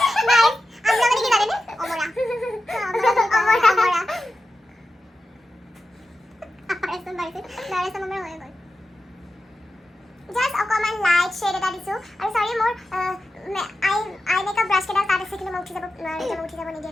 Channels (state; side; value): normal; both; correlation 0.91